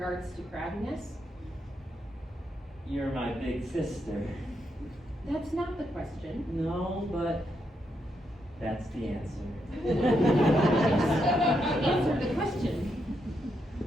to crabbiness? You're my big sister. That's not the question. No, but that's the answer. Answer the question.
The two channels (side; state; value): both; normal; correlation 0.80